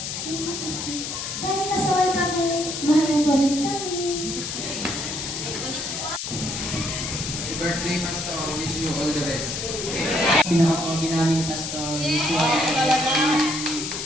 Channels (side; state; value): left; noise; hiss, 5 dB below the sound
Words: Dahil nasaway kami, mahal mo pa rin kami. Happy birthday, Pastor. Wish you all the best. Pinakapogi namin, Pastor. Wish you all the best.